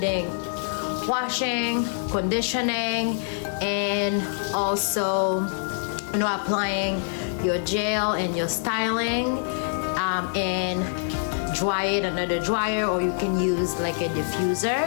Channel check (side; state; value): right; silent; digital silence